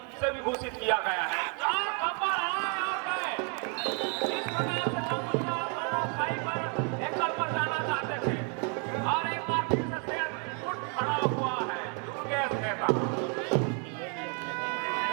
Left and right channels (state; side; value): quieter; left; 38.6 dB